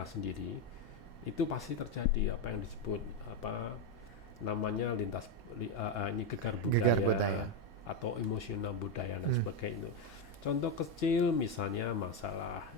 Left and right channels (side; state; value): both; normal; correlation 0.07